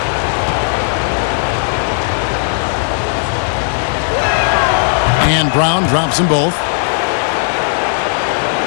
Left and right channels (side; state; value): right; silent; 59 dB below the other